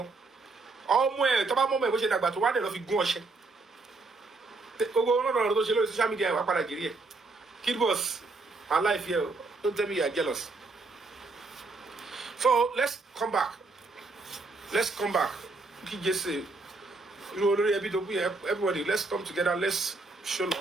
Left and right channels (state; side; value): quieter; left; 3.5 dB